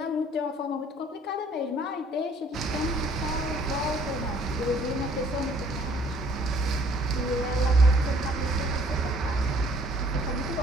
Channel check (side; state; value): both; normal; correlation 0.59